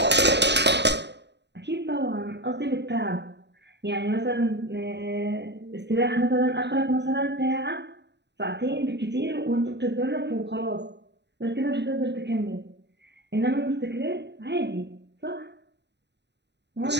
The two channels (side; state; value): left; late; 0.50 ms